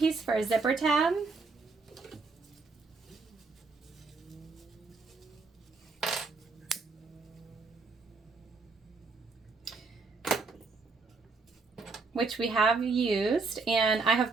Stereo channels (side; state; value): left; quieter; 4.2 dB